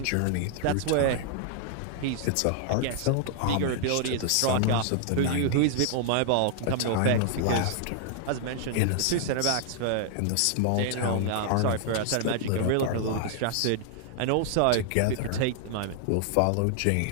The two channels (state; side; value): different; both; correlation -0.01